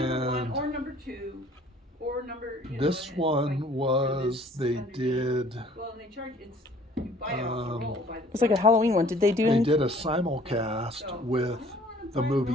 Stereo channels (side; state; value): both; normal; correlation 0.55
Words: 1 or number 2 or number. This one was they did. Well, and they charge you buy it off the roll. It's like a Halloween one. Did they do? They did a simulcast with the